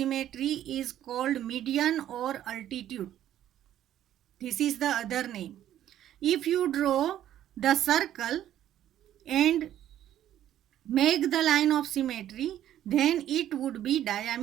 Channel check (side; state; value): left; quieter; 11.7 dB